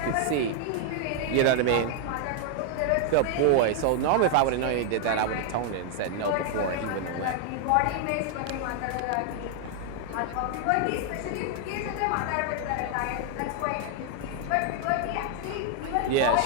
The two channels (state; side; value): different; both; correlation 0.00